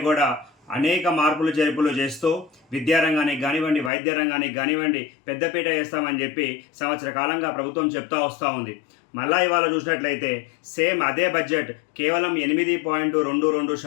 కూడా అనేక మార్పులు చేర్పులు చేస్తూ విద్యారంగానికి కానివ్వండి, వైద్య రంగానికి కానివ్వండి పెద్దపీట వేస్తామని చెప్పి సంవత్సర కాలంగా ప్రభుత్వం చెప్తా వస్తూ ఉంది. మళ్ళా ఇవాళ చూసినట్లయితే సేమ్ అదే బడ్జెట్ కేవలం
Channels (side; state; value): right; drops out; at 3.9 s